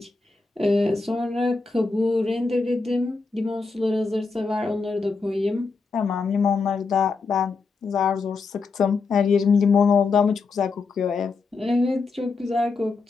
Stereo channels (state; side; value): quieter; right; 4.3 dB